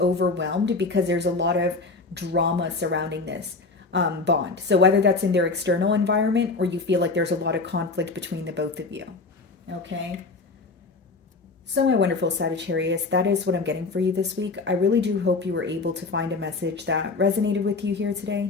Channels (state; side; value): quieter; right; 3.8 dB